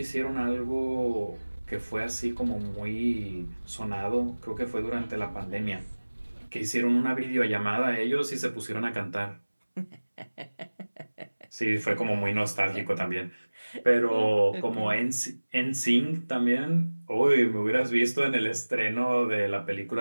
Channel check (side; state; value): both; inverted; correlation -1.00